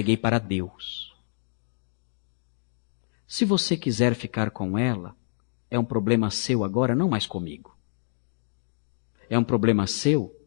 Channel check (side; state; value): right; silent; digital silence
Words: para Deus. Se você quiser ficar com ela, é um problema seu agora, não mais comigo. É um problema seu